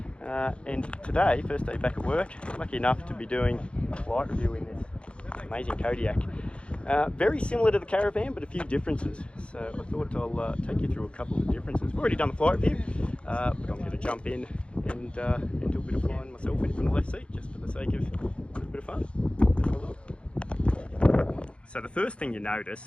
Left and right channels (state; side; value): late; right; 0.058 ms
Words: And today, first day back at work, lucky enough to be doing a flight review in this amazing Kodiak. Very similar to the Caravan, but a few differences. So I thought I'll take you through a couple of the differences. We've already done the flight review, but I'm going to jump in and do a bit of flying myself in from the left seat, just for the sake of a bit of fun. Let's have a look. So the first thing you